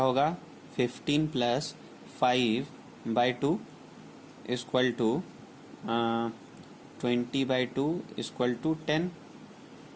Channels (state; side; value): identical; both; correlation 1.00